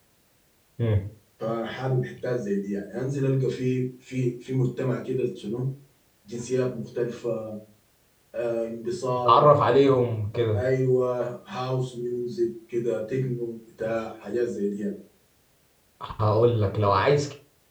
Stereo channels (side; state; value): both; identical; correlation 1.00